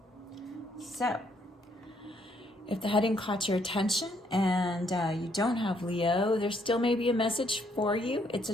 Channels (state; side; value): normal; both; correlation 0.70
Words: So, if the heading caught your attention and you don't have Leo, there still may be a message for you. It's a